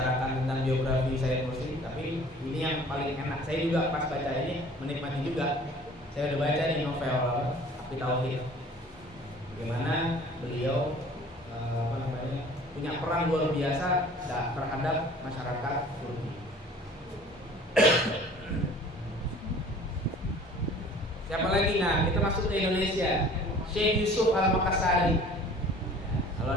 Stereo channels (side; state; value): both; normal; correlation 0.48